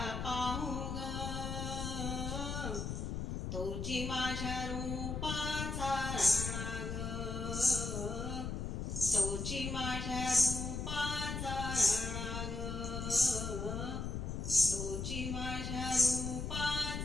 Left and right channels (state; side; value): noise; left; rumble, 3 dB below the sound